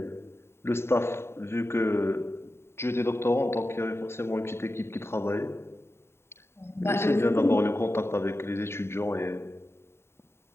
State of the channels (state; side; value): late; right; 0.12 ms